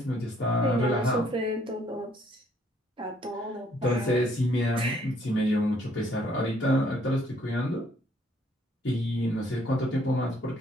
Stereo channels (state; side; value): normal; both; correlation 0.65